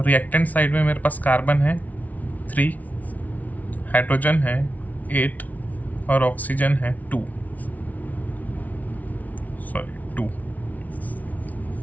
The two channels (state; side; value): late; right; 0.073 ms